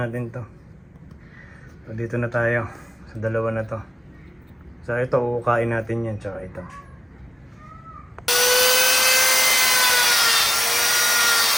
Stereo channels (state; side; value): normal; both; correlation 0.95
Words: natin to. So, dito na tayo. Sa dalawa na to. So, ito, uukain natin yan. Tsaka ito.